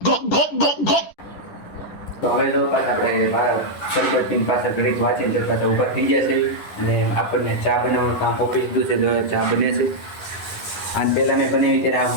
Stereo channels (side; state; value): right; late; 10 ms